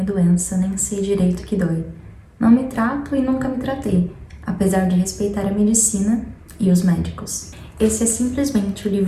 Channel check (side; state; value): both; identical; correlation 1.00